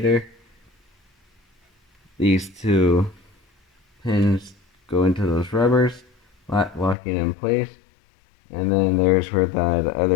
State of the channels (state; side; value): drops out; right; at 7.0 s